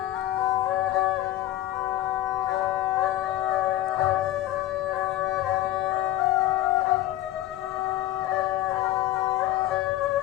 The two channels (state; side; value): quieter; right; 14.2 dB